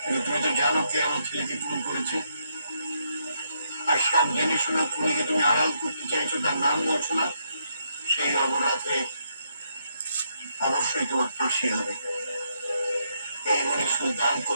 কিন্তু তুমি তো জানো কে আমার ছেলেকে খুন করেছে, আর সব জেনে শোনা খুনিকে তুমি আড়াল করতে চাইছো, তার নাম বলছো না। সেই অপরাধে অবশ্যই তোমার ফাঁসি হবে। এই বলে সুলতান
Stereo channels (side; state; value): both; inverted; correlation -0.76